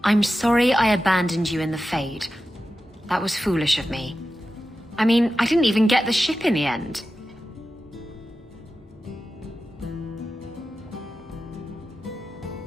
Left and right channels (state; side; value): normal; both; correlation 0.92